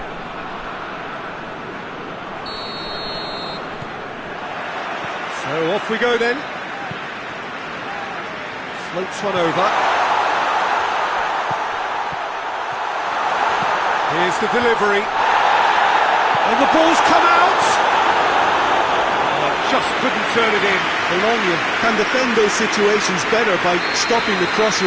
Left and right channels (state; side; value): identical; both; correlation 1.00